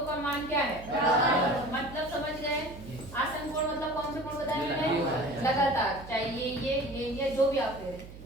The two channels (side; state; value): right; noise; hum, 15 dB below the sound